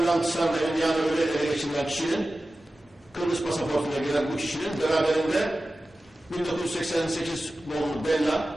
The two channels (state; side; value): normal; both; correlation 0.95